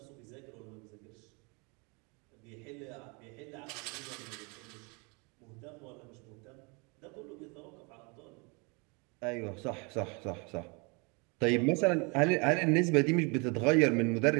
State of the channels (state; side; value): quieter; left; 30.9 dB